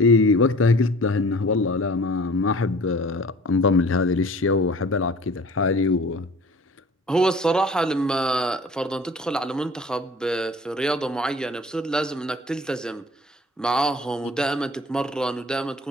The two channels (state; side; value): normal; both; correlation 0.46